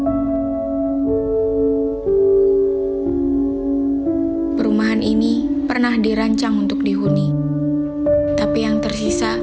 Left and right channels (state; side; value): identical; both; correlation 1.00